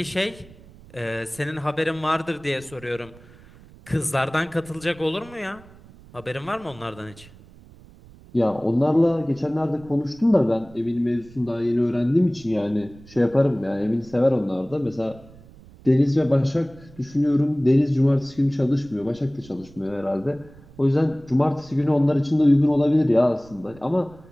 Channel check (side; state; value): right; noise; rumble, 23 dB below the sound